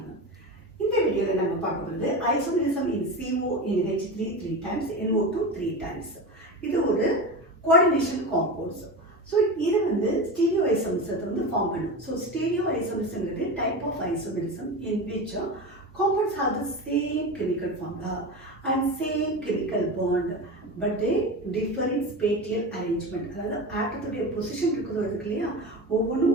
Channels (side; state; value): both; normal; correlation 0.25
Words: இந்த வீடியோவில் நம்ம பார்க்க போகிறது isomerism in CO in H3 3 times, NO2 3 times. இது ஒரு கோஆர்டினேஷன் காம்பவுண்ட்ஸ். ஸோ இது ஸ்டீரியோ ஐசோமெரிசத்தை ஃபார்ம் பண்ணும். ஸோ ஸ்டீரியோ ஐசோமெரிசம்ங்கிறது type of isomerism in which compounds have the same chemical formula and same chemical bond, but they differ in spatial arrangement. அதாவது ஆட்டத்துடைய position இருக்கிறது இல்லையா,